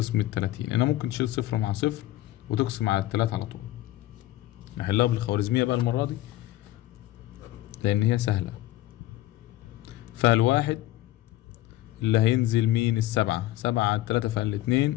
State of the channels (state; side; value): quieter; right; 15.3 dB